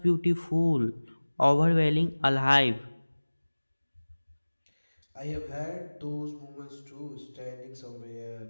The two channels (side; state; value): both; inverted; correlation -1.00